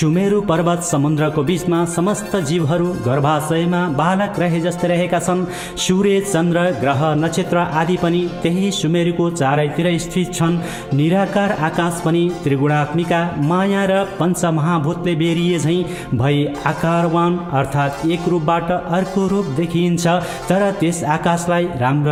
पर्वत समुद्रको बीचमा समस्त जीवहरू गर्भाशयमा बालक रहे जस्तै रहेका छन्। सूर्य चन्द्र ग्रह नक्षत्र आदि पनि त्यही सुमेरुको चारैतिर स्थित छन्। निराकार आकाश पनि त्रिगुणात्मिका माया र पञ्चमहाभूतले बेरिए झैँ भई आकारवान अर्थात् एक रूपबाट अर्को रूप देखिन्छ। तर त्यस आकाशलाई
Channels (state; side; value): identical; both; correlation 1.00